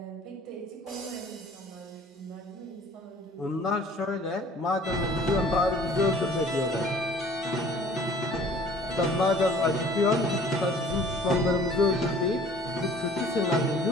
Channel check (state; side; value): normal; both; correlation 0.51